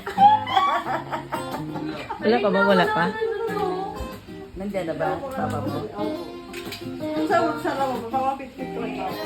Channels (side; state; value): both; identical; correlation 1.00